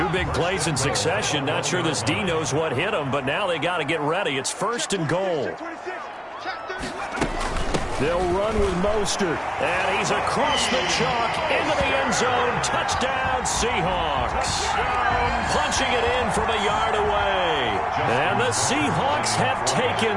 big plays in succession. Not sure this D knows what hit him, but now they got to get ready. It's 1st and goal. They'll run with Mostert. And he's across the chalk into the end zone. Touchdown, Seahawks. Punching it in from a yard away. And the Seahawks have taken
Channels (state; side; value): identical; both; correlation 1.00